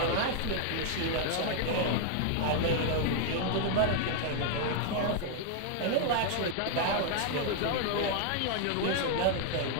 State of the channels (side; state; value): both; different; correlation 0.00